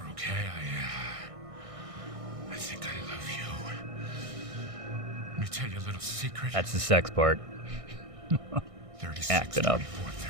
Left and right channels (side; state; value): left; late; 1.6 ms